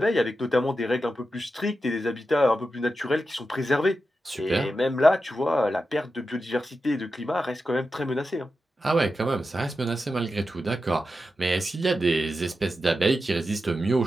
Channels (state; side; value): normal; both; correlation 0.90